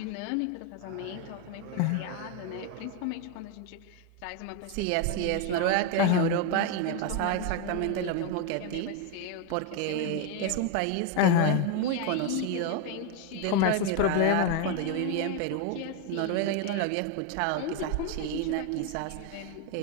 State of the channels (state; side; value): different; both; correlation 0.01